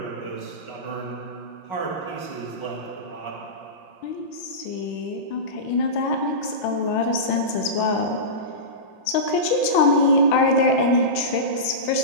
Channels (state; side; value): late; right; 6.0 ms